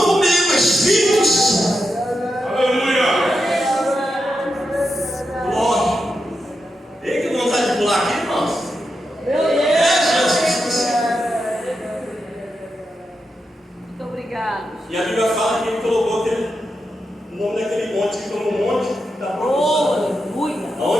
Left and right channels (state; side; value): normal; both; correlation 0.86